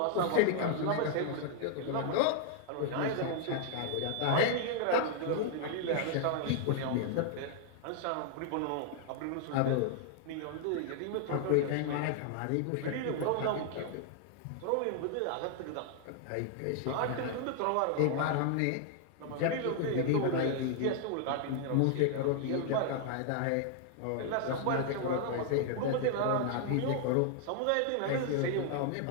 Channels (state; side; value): different; both; correlation 0.00